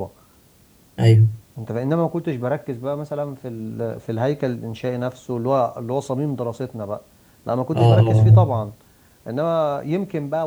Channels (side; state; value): both; identical; correlation 1.00